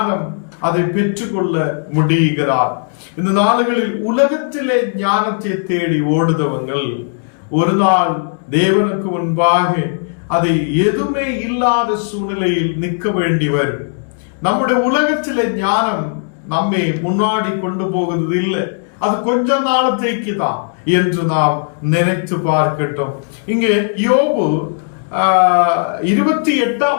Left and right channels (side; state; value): right; silent; digital silence